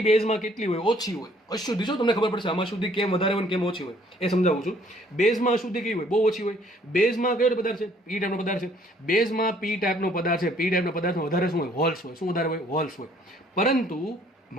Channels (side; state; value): both; normal; correlation 0.61